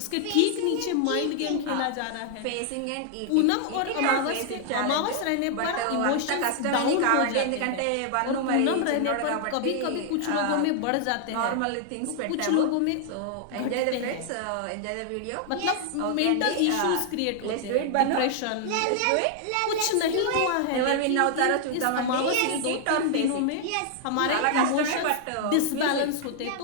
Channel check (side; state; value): both; different; correlation 0.00